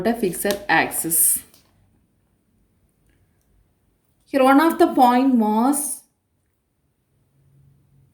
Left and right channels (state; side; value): identical; both; correlation 1.00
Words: a fixed axis. Here one of the point mass